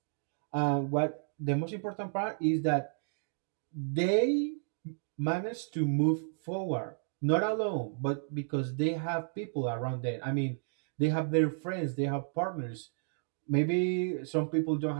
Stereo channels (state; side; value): silent; left; digital silence